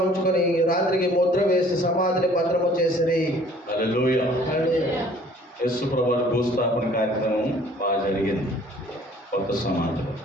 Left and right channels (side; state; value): both; normal; correlation 0.54